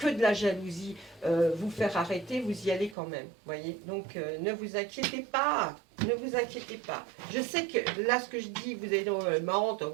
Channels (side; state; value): left; drops out; at 3.0 s